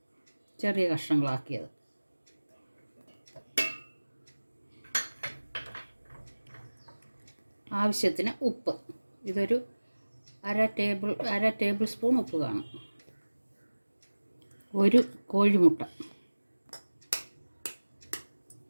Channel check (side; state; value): both; inverted; correlation -1.00